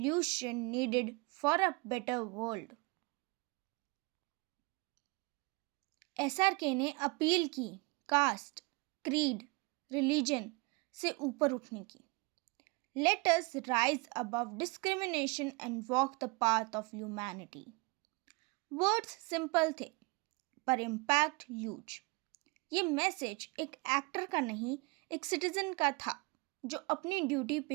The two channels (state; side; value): quieter; left; 27.6 dB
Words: needed for a better world. SRK ने अपील की कास्ट, क्रीड, रिलीजन से ऊपर उठने की। Let us rise above discrimination and walk the path of humanity. Words simple थे, पर इम्पैक्ट ह्यूज। ये मैसेज एक एक्टर का नहीं, एक सिटीजन का था जो अपनी ड्यूटी